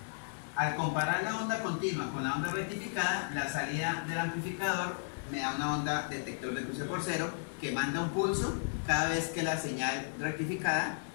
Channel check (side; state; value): right; silent; 55 dB below the other